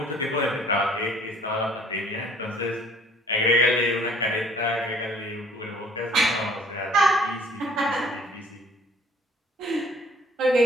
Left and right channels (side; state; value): both; normal; correlation 0.56